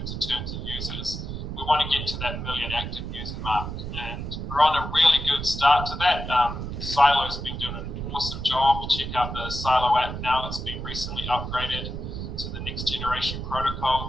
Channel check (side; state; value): right; noise; rumble, 6 dB below the sound